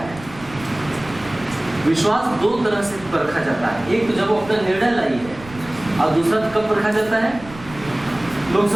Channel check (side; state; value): right; noise; rumble, 18 dB below the sound